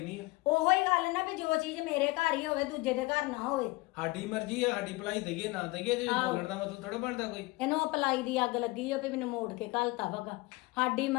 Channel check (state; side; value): quieter; right; 22.8 dB